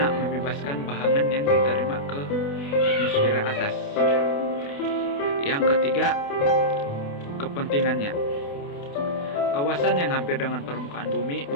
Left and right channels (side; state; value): right; late; 28 ms